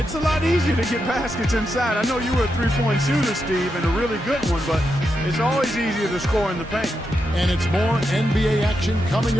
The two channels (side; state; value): both; normal; correlation 0.85